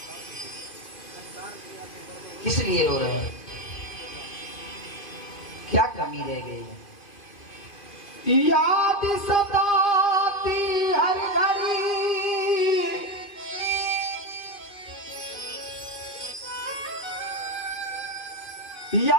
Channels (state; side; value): late; right; 2.5 ms